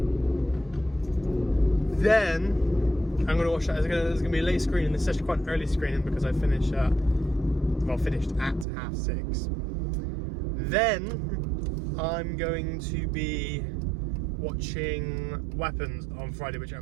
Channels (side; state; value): left; drops out; at 8.7 s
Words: Then I'm going to watch that. There's going to be a late screening. It's actually quite an early screening because I finished at 6:30. Then I'm going to be watching Weapons on Friday, which